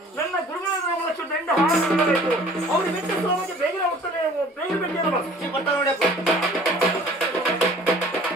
ನನ್ನ ಗುರುಗಳ ದಂಡ ಅವ್ರು ಬಿಟ್ಟು ಬೇಗನೆ ಹೋಗ್ತಾರೆ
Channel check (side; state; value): both; normal; correlation 0.50